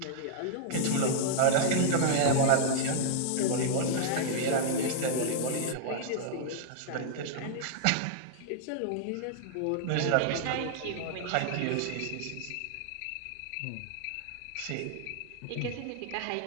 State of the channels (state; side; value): different; both; correlation -0.01